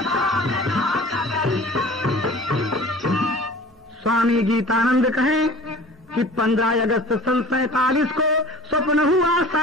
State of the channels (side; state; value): both; normal; correlation 0.43